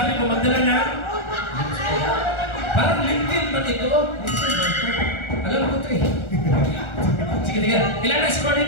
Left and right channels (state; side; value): late; right; 1.4 ms